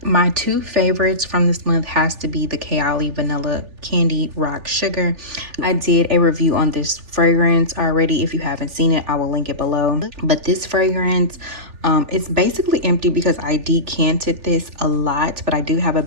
my two favorites from this month has to be the Kayali Vanilla Candy Rock Sugar. I did a review on this fragrance already. If you haven't seen it, I will link it below. But this fragrance, it's basically empty because I decanted this a lot, but I do have a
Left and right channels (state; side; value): late; left; 3.4 ms